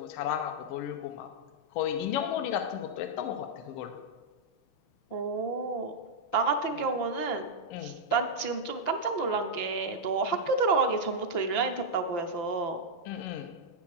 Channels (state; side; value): late; right; 5.9 ms